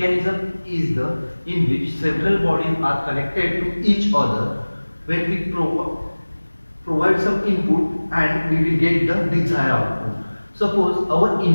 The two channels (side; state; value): both; inverted; correlation -1.00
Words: is the in which several bodies are connected to each other when we provide some input and we will get the desired output. Suppose our